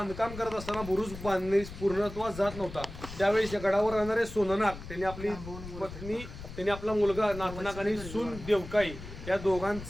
करत असताना बुरुज बांधणे पूर्णत्वास जात नव्हता. त्यावेळेस या गडावर राहणारे सोननाग त्यांनी आपली पत्नी, त्यांनी आपला मुलगा नागनाग आणि सून देवकाई या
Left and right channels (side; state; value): left; noise; rumble, 12 dB below the sound